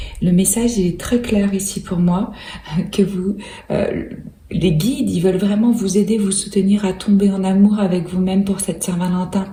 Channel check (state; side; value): identical; both; correlation 1.00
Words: Le message il est très clair ici pour moi, que les guides, ils veulent vraiment vous aider, vous soutenir à tomber en amour avec vous-même pour cette Saint-Valentin.